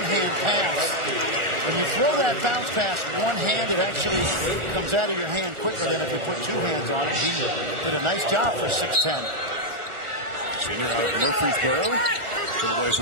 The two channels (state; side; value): late; left; 1.4 ms